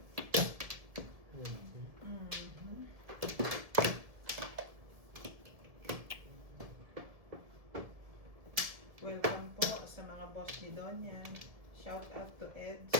Shout out to Eds,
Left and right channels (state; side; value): late; left; 1.7 ms